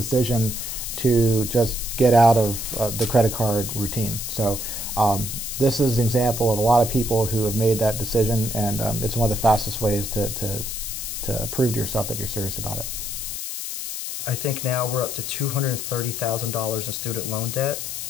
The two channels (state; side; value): noise; left; hiss, 5 dB below the sound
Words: to just get out of the credit card routine. So this is an example of a lot of people who have made that decision, and it's one of the fastest ways to prove to yourself that you're serious about it. I think now we're up to $230,000 in student loan debt.